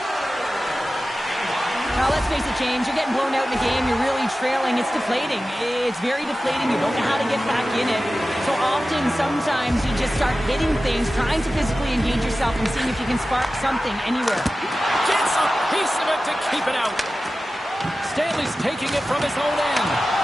Now, let's face it, James, you're getting blown out in the game. You're really trailing. It's deflating. It's very deflating. You don't know how to get back in it. So often, sometimes, you just start hitting things, trying to physically engage yourself and seeing if you can spark something anywhere. Gets a piece of it to keep it out. Stanley's taking it from his own end.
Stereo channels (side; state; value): both; normal; correlation 0.95